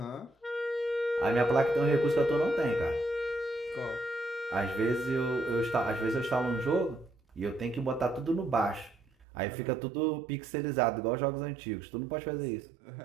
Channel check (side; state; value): left; drops out; at 9.2 s